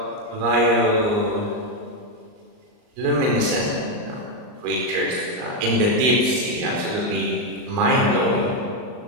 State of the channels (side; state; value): left; late; 39 ms